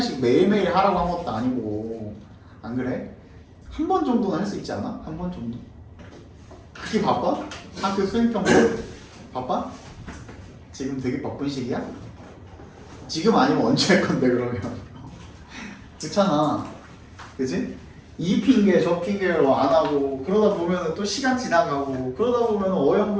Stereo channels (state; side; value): identical; both; correlation 1.00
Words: 매일매일 하라고 한 것도 아니고. 안 그래? 한 번 정도는 할 수 있지 않아? 한 번 정도? 그렇게 바빠? 학교 수행평가 바빠? 지금 되게 바쁜 시기야? 지금 아니면 언제 할 건데 그러면? 그렇잖아. 그치? 이 핑계 저 핑계로 안 하고 그러다 보면 또 시간 지나가고 그러다 보면